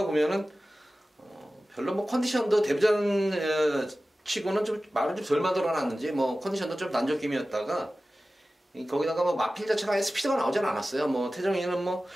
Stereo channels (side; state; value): both; normal; correlation 0.96